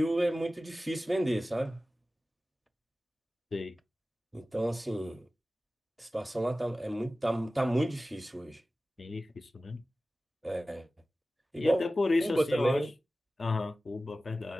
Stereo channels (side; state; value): both; normal; correlation 0.96